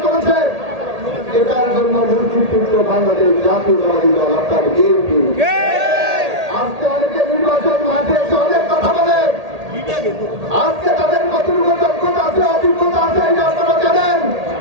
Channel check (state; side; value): late; left; 1.8 ms